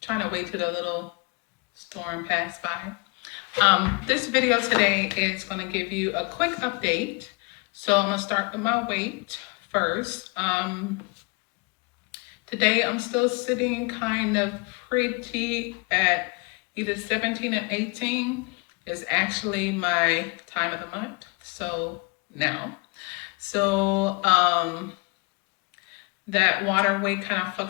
trying to wait till the little storm pass by. This video today is going to give you a quick update. So I'm going to start with my weight first. Today I'm still sitting kind of pretty at either 17 or 18 is actually my time of the month. So now, that water weight kind of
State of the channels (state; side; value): quieter; right; 30.9 dB